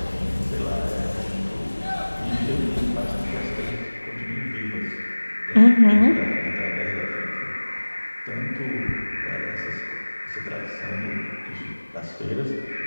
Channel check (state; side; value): inverted; both; correlation -1.00